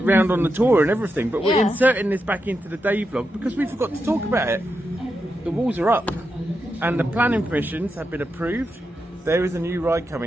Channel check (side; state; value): both; normal; correlation 0.86